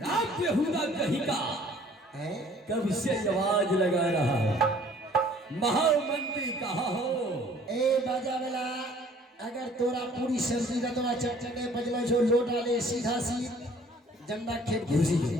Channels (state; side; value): normal; both; correlation 0.55